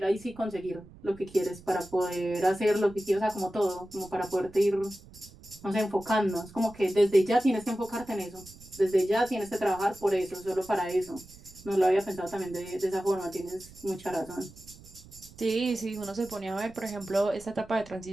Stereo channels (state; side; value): noise; right; rumble, 21 dB below the sound